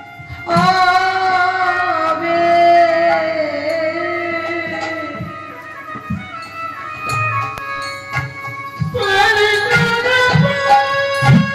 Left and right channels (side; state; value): both; identical; correlation 1.00